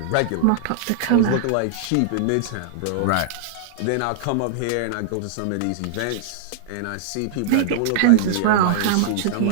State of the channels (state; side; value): different; both; correlation -0.01